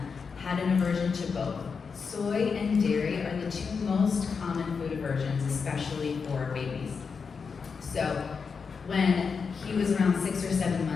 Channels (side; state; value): right; quieter; 5.5 dB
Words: had an aversion to both. Soy and dairy are the two most common food aversions, especially for babies. So when he was around 6 or 7